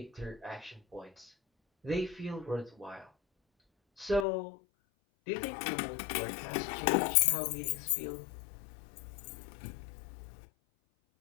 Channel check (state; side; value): drops out; right; at 4.2 s